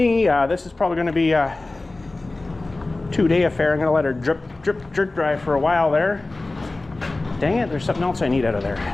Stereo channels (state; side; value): quieter; right; 3.1 dB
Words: this is probably going to be a 2-day affair. I'm going to let her drip, drip dry for a while there. Dang it, there's something else I need out of there.